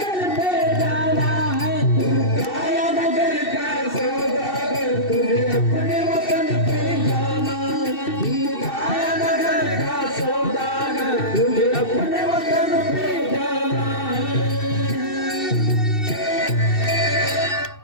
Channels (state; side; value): late; right; 2.7 ms